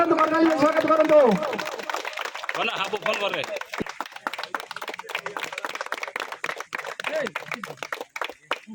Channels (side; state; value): both; identical; correlation 1.00